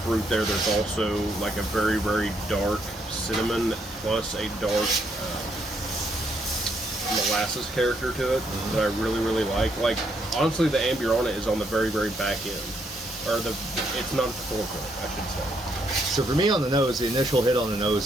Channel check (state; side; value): normal; both; correlation 0.74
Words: fruit there. There's also like a very, very dark cinnamon plus a dark molasses character to it that I really, really like. Like honestly, the Amburana is on the very, very back end, or it's not at the forefront, I should say. So for me on the nose, the initial hit on the